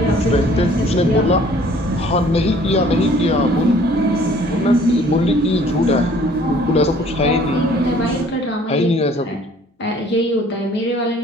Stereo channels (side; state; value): both; normal; correlation 0.56